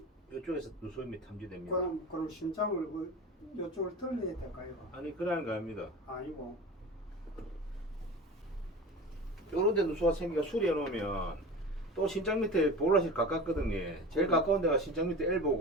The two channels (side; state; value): both; normal; correlation 0.33